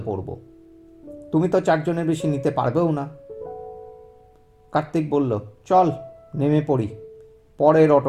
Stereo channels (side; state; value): both; identical; correlation 1.00